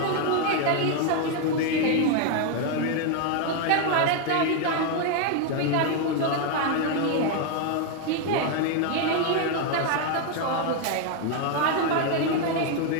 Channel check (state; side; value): different; both; correlation 0.01